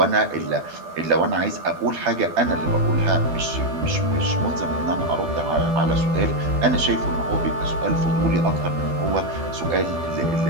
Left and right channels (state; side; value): late; left; 12 ms